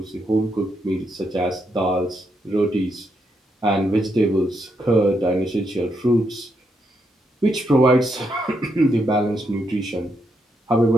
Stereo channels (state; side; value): normal; both; correlation 0.79